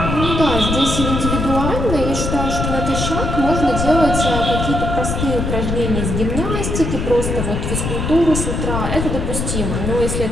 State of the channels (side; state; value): left; noise; rumble, 2 dB below the sound